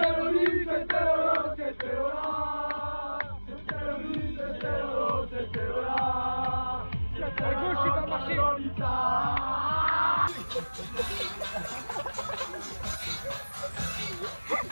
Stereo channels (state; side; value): inverted; both; correlation -1.00